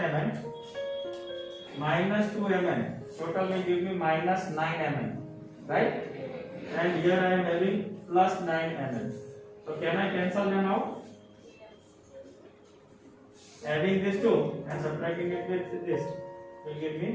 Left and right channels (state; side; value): identical; both; correlation 1.00